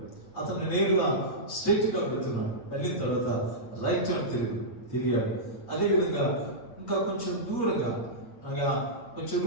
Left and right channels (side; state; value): right; late; 8.5 ms